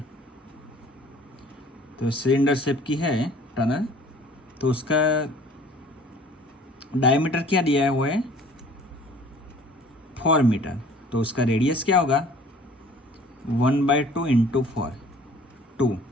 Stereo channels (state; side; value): normal; both; correlation 0.51